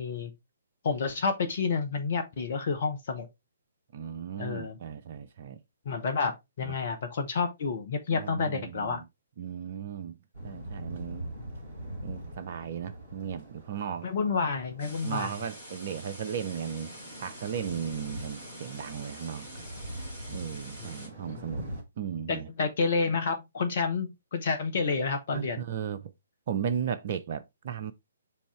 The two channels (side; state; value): both; inverted; correlation -0.55